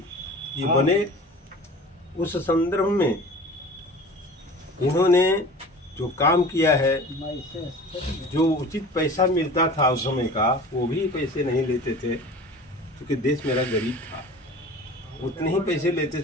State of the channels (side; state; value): both; normal; correlation 0.40